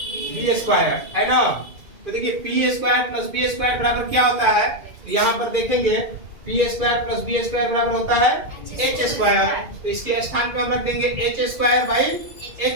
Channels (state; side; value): late; left; 2.4 ms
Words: B square, है ना। तो देखिए P square plus B square बराबर क्या होता है, तो यहाँ पर देखेंगे P square plus B square बराबर होता है एच स्क्वायर। तो इसके स्थान पे हम रख देंगे H square by